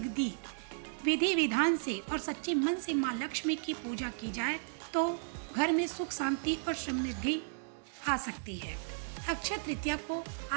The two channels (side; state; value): left; silent; digital silence